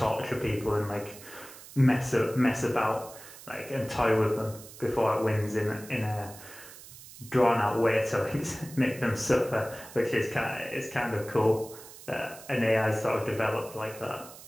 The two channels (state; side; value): noise; right; hiss, 17 dB below the sound